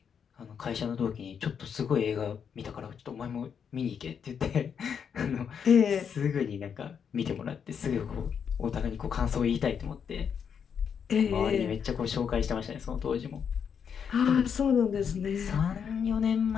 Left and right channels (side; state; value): right; quieter; 7.3 dB